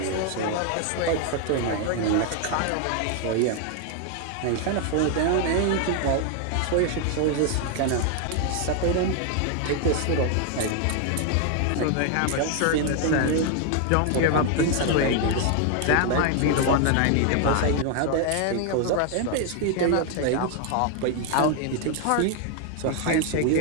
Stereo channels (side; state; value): both; different; correlation 0.00